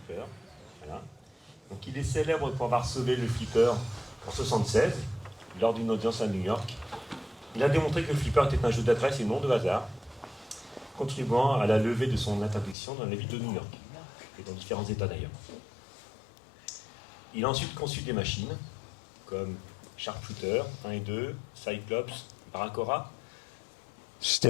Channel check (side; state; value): right; drops out; at 12.8 s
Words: Voilà. Donc, il est célèbre pour avoir sauvé le flipper en 1976, lors d'une audience à New York. Il a démontré que le flipper était un jeu d'adresse et non de hasard, contribuant à la levée de son interdiction dans la ville de New York, et dans différents États d'ailleurs. Il a ensuite conçu des machines, comme Sharpshooter 1 et 2, Cyclops, Baracora,